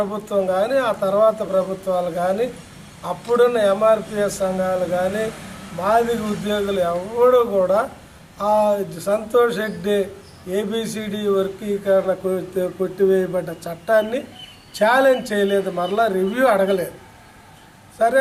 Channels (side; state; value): both; identical; correlation 1.00